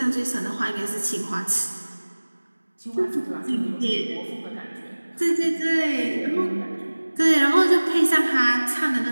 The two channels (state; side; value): inverted; both; correlation -1.00